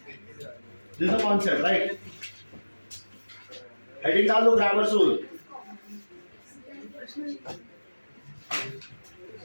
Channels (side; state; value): both; inverted; correlation -1.00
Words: this the concept right heading डाल दो grammars rule